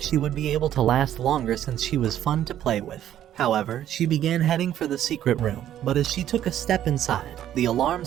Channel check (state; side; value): quieter; left; 11.4 dB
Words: she would be able to last longer since she was fun to play with. However, she began heading for the secret room, but as she took a step inside, the alarm